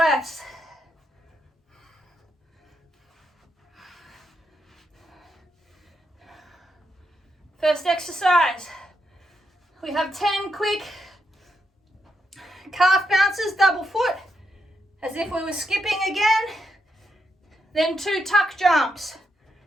First exercise. We have 10 quick calf bounces, double foot, as if we were skipping again. Then 2 tuck jumps.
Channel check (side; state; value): both; normal; correlation 0.82